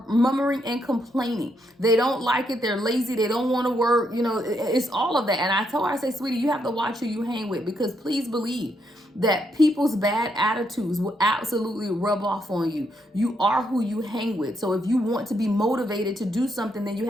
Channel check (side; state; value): both; normal; correlation 0.77